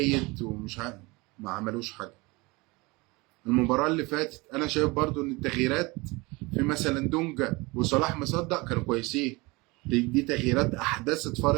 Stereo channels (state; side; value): quieter; left; 24.5 dB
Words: ومش عارف، ما عملوش حاجه. المباراه اللي فاتت انا شايف برضو ان التغييرات في مثلا دونجا وصلاح مصدق كانوا كويسين، دي تغييرات احدثت